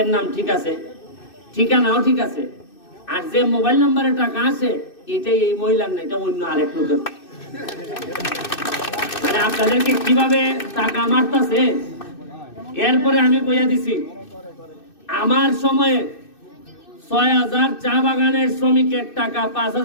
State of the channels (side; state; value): right; late; 2.6 ms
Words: নাম ঠিক আছে, ঠিকানাও ঠিক আছে, আর যে মোবাইল নাম্বারে টাকা আছে এটাই এই মহিলার না, এটা অন্য আরেক লোকের। মানে আপনাদেরকে কিভাবে টাকা মারতেছে। এরপরে আমি কইয়া দিছি, আমার সময়ে ৬,০০০ চা বাগানের শ্রমিকের টাকা